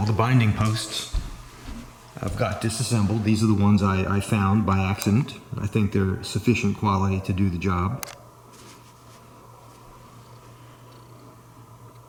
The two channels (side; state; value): both; identical; correlation 1.00